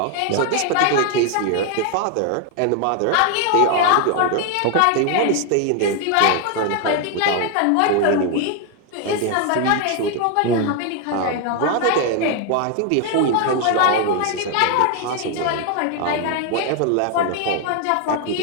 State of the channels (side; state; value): both; different; correlation 0.00